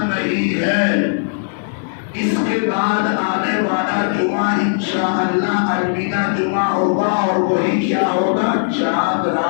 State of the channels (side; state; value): right; silent; digital silence